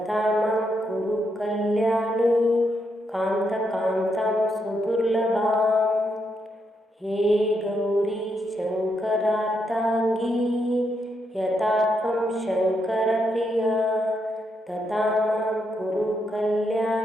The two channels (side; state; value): both; normal; correlation 0.80